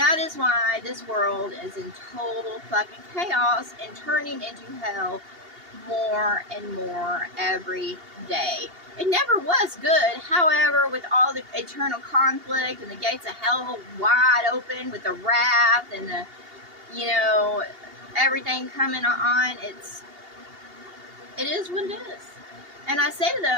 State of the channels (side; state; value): left; late; 2.8 ms